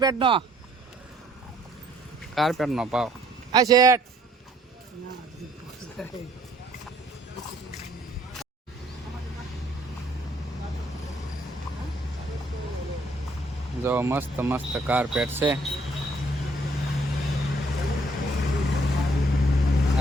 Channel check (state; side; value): normal; both; correlation 0.63